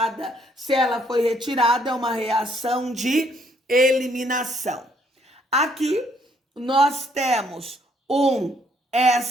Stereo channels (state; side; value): normal; both; correlation 0.67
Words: Se ela foi retirada, é uma reação de eliminação. Aqui nós temos um